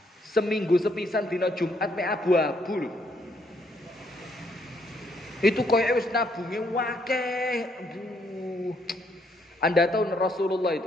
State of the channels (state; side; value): normal; both; correlation 0.71